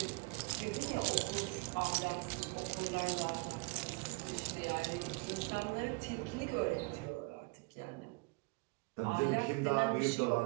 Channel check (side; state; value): left; quieter; 28.1 dB